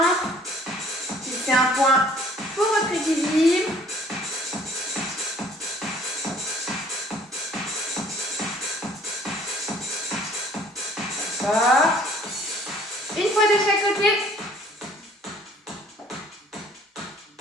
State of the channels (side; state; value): both; normal; correlation 0.56